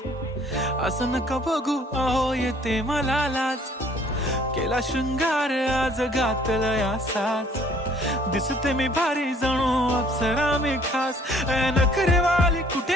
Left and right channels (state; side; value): normal; both; correlation 0.58